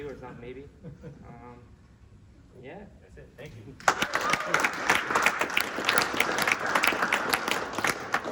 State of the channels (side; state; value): both; identical; correlation 1.00